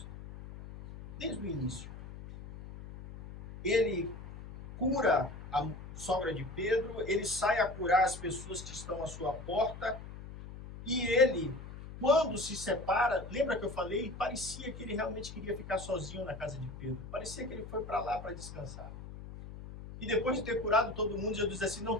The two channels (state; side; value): noise; left; hum, 12 dB below the sound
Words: Desde o início. Ele cura a sogra de Pedro, ele sai a curar as pessoas que estão à sua porta, e ele, quando se separa, lembra que eu falei? Parecia que ele realmente queria ficar sozinho na casa de Pedro. Parecia que ele foi para lá para descansar. E depois de ter curado todo mundo, Jesus disse assim, não